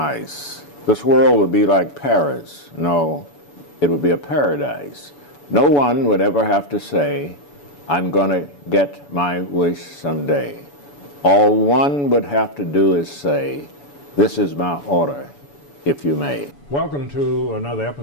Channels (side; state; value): right; late; 7.0 ms